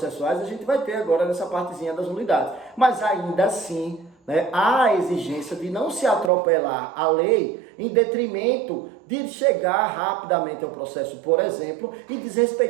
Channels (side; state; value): left; drops out; at 6.3 s